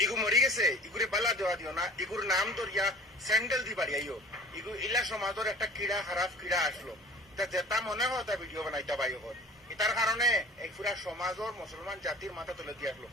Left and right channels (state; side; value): normal; both; correlation 0.45